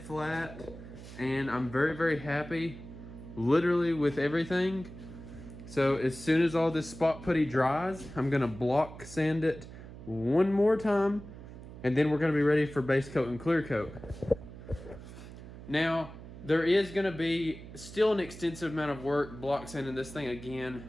flat, and I'm very, very happy literally with everything. So as soon as all this spot putty dries, I'm gonna block sand it one more time, and then we're gonna be ready for base coat and clear coat. Now, there is gonna be still an extensive amount of work block sanding this thing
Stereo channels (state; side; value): noise; right; hum, 14 dB below the sound